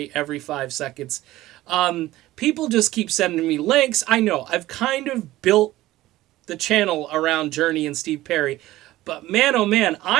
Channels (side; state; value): left; quieter; 16.4 dB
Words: every 5 seconds. People just keep sending me links. I know, I've kind of built the channel around Journey and Steve Perry, but man, oh man,